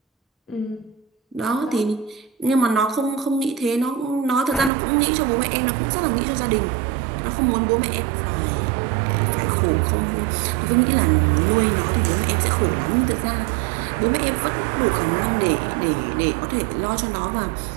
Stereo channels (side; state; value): left; drops out; at 4.7 s